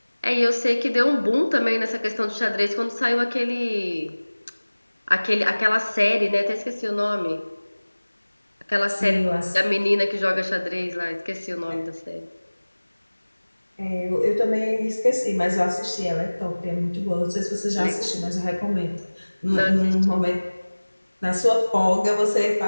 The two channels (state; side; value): inverted; both; correlation -1.00